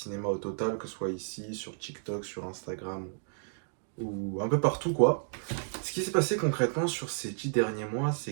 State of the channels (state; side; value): silent; left; digital silence